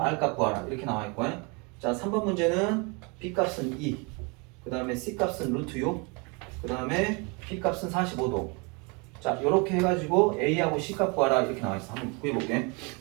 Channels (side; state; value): left; quieter; 30.8 dB